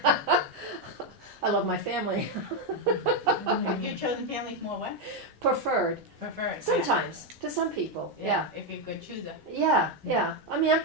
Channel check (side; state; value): both; normal; correlation 0.04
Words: I love my family. Your chosen family's more what? Preferred. Preferred. Sometimes, to some people, yeah. If you're a good chooser. Yeah. I mean, I'm